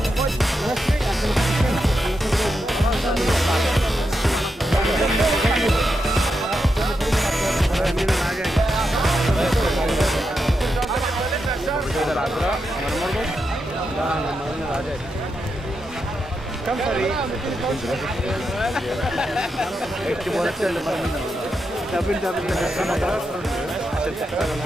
كم فريق؟ اكتبوا لك اللي مرمينا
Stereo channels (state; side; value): normal; both; correlation 0.85